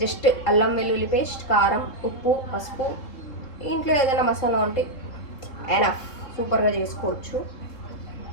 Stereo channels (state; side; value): late; right; 3.7 ms